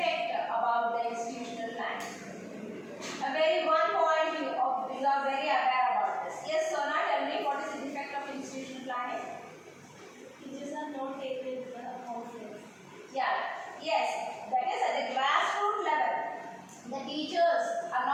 about the institutional plan? A very one point you are very aware about this. Yes, Sona, tell me what is the defect of institutional planning? Teachers are not taken confidence. Yeah, yes, that is at the grassroots level. The teachers are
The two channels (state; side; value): identical; both; correlation 1.00